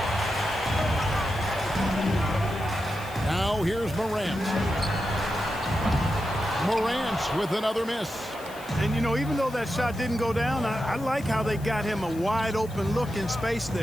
Now here's Morant. Morant with another miss. And, you know, even though that shot didn't go down, I like how they got him a wide open look in space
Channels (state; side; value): noise; left; hiss, 20 dB below the sound